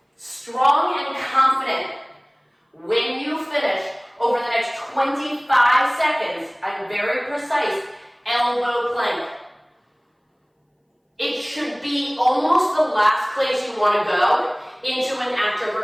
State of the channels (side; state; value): both; identical; correlation 1.00